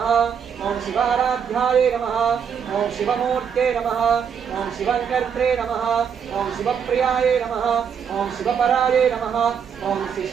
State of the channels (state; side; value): quieter; left; 7.4 dB